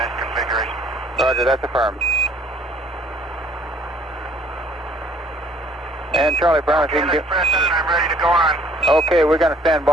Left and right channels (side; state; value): both; normal; correlation 0.59